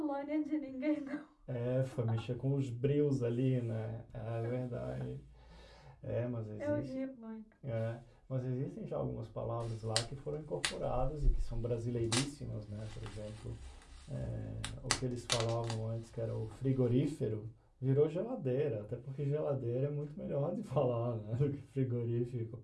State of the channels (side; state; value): both; identical; correlation 1.00